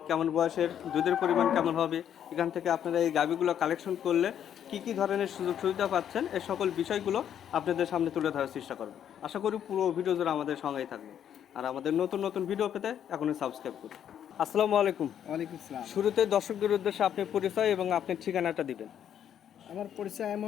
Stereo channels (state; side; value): quieter; right; 9.5 dB